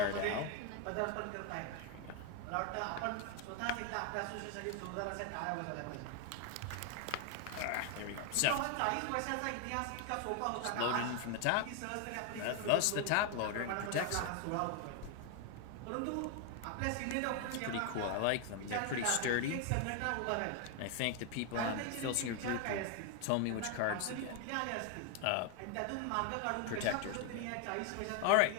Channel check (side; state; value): both; different; correlation 0.01